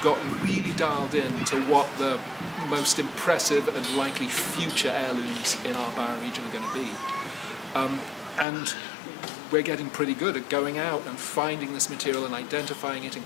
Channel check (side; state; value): right; drops out; at 8.5 s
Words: gotten really dialed in to what the most impressive and likely future heirlooms in our bioregion are going to be. And we're getting pretty good at going out and finding this material and identifying it and